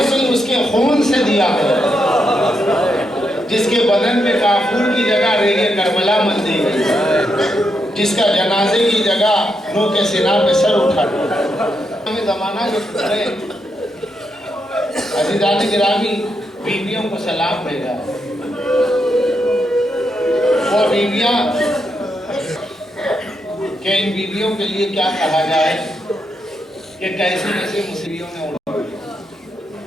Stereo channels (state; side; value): normal; both; correlation 0.82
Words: اس کے خون سے دیا گیا، جس کے بدن میں کافور کی جگہ ریگ کربلا مل دی گئی، جس کا جنازے کی جگہ نو کے سینہ پہ سر اٹھا ہمیں زمانہ کے پترے عزیزان گرامی بیویوں کو سلام بھیجا ہے۔ وہ بیویاں کہ ان بیویوں کے لیے کیا کہا جائے کہ کیسی کیسی مصیبتوں نے اڑا۔